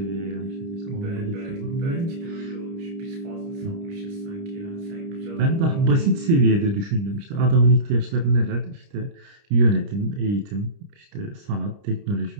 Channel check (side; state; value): left; late; 30 ms